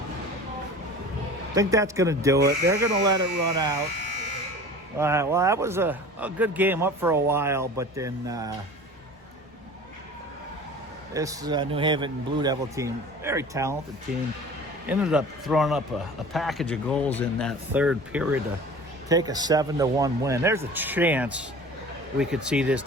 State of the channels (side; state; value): both; normal; correlation 0.41